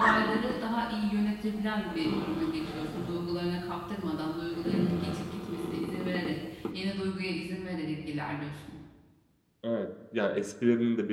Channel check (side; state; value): both; identical; correlation 1.00